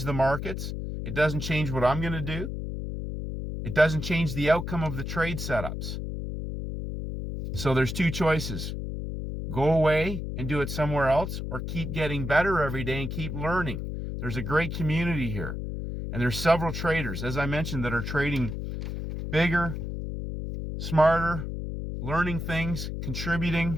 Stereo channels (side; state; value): left; noise; hum, 5 dB below the sound